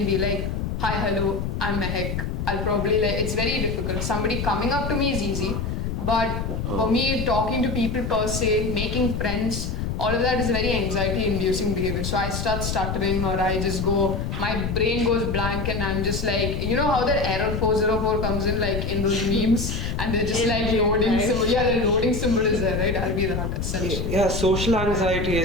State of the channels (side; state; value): left; noise; rumble, 3 dB below the sound